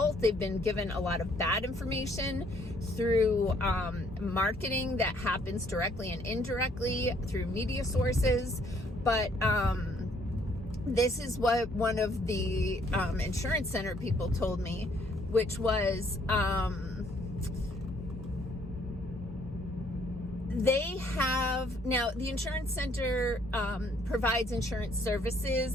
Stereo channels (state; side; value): normal; both; correlation 0.65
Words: They've been given a lot of bad information through marketing that happens directly and indirectly through media sources. But this is what one of the insurance center people told me, which was they have, now the insurance center provides insurance